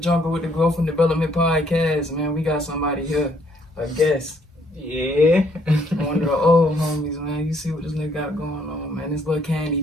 with the Growth and Development Podcast, man. We got somebody here, a guest. Yeah. One of the old homies, man. You see what this nigga got going on, man. This little candy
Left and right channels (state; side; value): normal; both; correlation 0.67